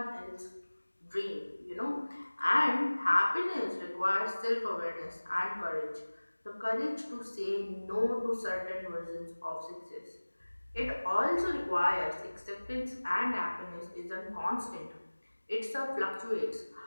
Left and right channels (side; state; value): both; inverted; correlation -1.00